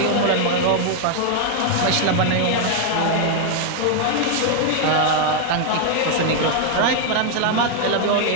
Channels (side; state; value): both; different; correlation 0.00